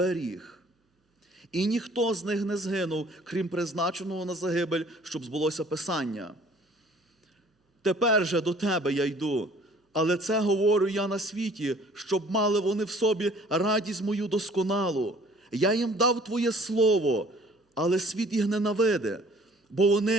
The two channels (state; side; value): normal; both; correlation 0.54